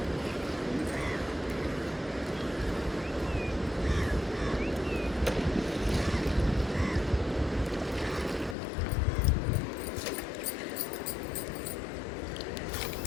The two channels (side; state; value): right; drops out; at 8.6 s